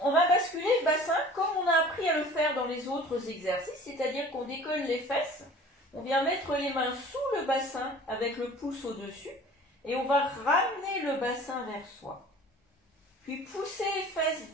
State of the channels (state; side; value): normal; both; correlation 0.45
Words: va basculer le bassin comme on a appris à le faire dans les autres exercices, c'est-à-dire qu'on décolle les fesses, on vient mettre les mains sous le bassin avec le pouce au-dessus et on va ramener le bassin vers soi. Puis pousser les fesses